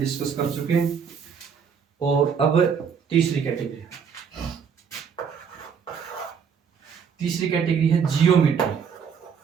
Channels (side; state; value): left; quieter; 6.8 dB